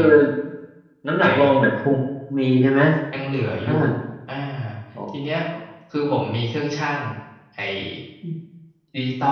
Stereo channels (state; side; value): identical; both; correlation 1.00